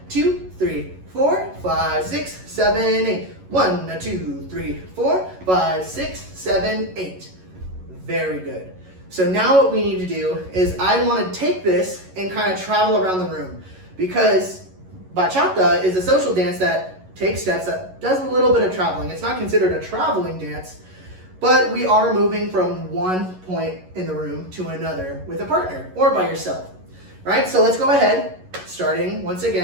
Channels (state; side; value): late; left; 11 ms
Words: 2, 3, 4, 5, 6, 7, 8. 1, 2, 3, 4, 5, 6, 7, 8. Very good. So now what we need to do is I want to take this and kind of travel around the room, because bachata is a social dance that takes steps, that does a little bit of traveling. It's not considered a traveling dance, but we are moving from one point in the room to another with a partner or by yourself, right? So let's go ahead, starting once